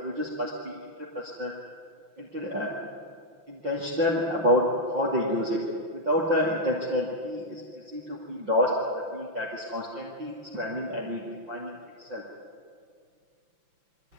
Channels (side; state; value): left; late; 5.9 ms